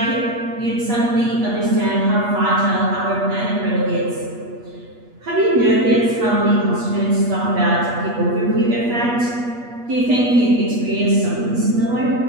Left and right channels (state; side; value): late; left; 8.3 ms